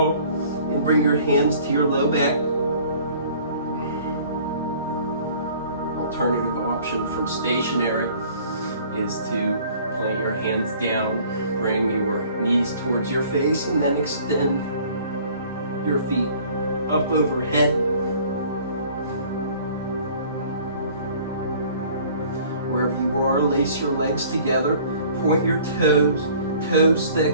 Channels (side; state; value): both; inverted; correlation -0.52